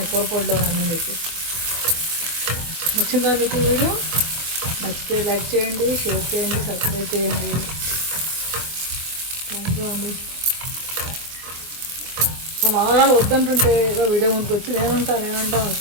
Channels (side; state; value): left; late; 24 ms